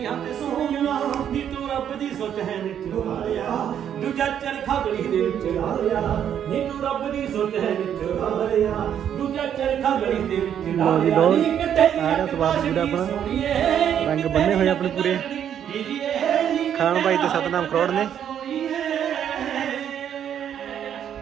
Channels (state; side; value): quieter; left; 9.3 dB